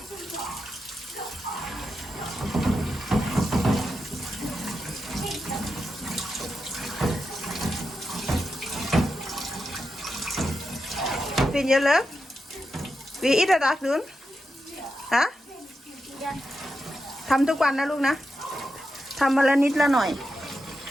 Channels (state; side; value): normal; both; correlation 0.88